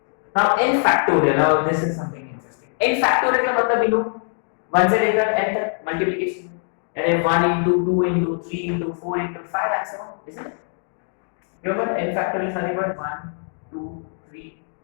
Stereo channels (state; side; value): silent; right; 64 dB below the other